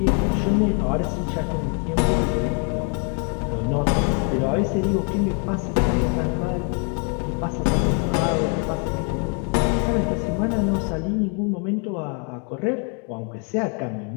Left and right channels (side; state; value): right; quieter; 37.8 dB